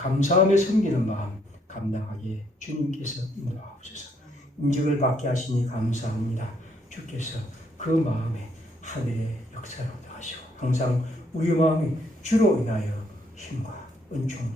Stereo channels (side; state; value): both; normal; correlation 0.70